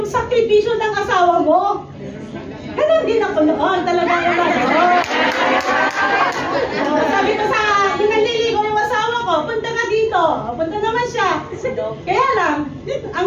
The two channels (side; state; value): both; identical; correlation 1.00